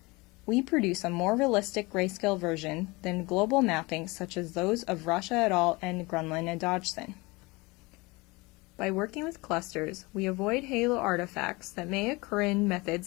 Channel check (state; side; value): quieter; right; 24.4 dB